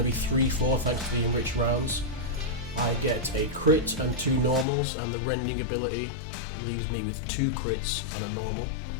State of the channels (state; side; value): drops out; right; at 4.7 s